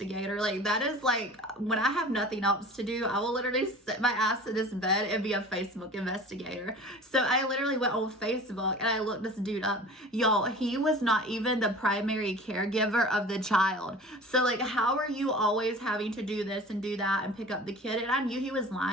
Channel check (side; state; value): both; normal; correlation 0.41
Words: Like, that is like, when I have nothing else to do, I will literally sit my ass in this bed and be a Facebook investigator. So I literally went on Facebook and I looked this dude up. Y'all, he was not even the primary caregiver of the child. So like, how are you always having to do this and do that and pick up the kid? And I knew he was